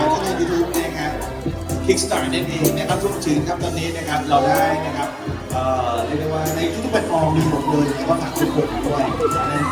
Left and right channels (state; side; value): identical; both; correlation 1.00